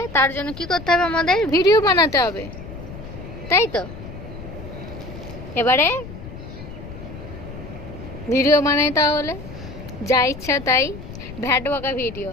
তার জন্য কি করতে হবে? আমাদের ভিডিও বানাতে হবে, তাই তো? এবারে ভিডিও বানাই, তাহলে যা ইচ্ছা তাই ভ্যাট বকা ভিডিও।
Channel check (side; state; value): left; noise; rumble, 12 dB below the sound